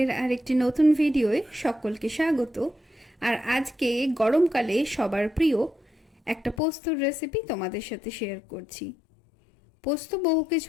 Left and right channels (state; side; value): drops out; right; at 6.6 s